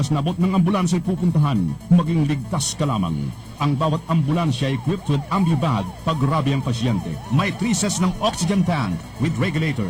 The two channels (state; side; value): identical; both; correlation 1.00